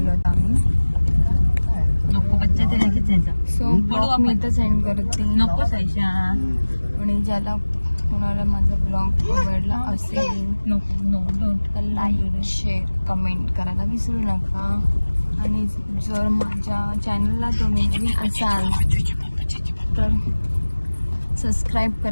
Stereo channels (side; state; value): both; inverted; correlation -1.00